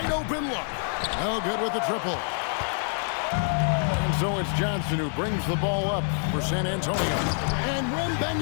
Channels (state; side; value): silent; right; 58 dB below the other